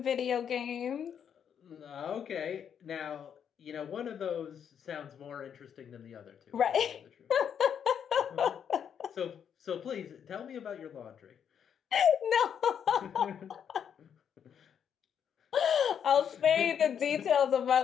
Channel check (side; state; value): right; quieter; 8.2 dB